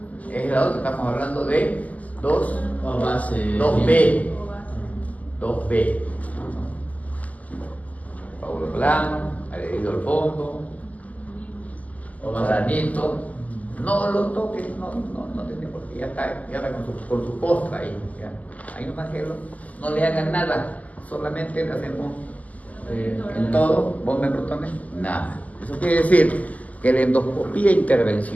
Es el lado que estamos hablando de 2. O base. 2B. 2B. Coágulo plano, adherido al fondo, O base. granito. No lo toques, no tiene por qué, ya está con su postra ahí. Ya. Ahí nomás que no le hagan nada, solamente le hacemos en todo, bomba de protones, nada. Eso quiere decir que la endoscopía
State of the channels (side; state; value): right; late; 0.075 ms